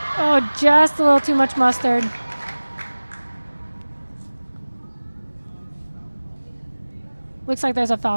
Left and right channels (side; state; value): both; inverted; correlation -1.00